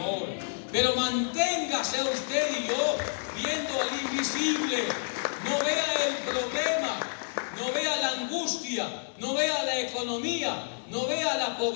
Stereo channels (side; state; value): right; silent; 58 dB below the other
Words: Pero manténgase usted y yo viendo al invisible. No vea el problema, no vea la angustia, no vea la economía, no vea la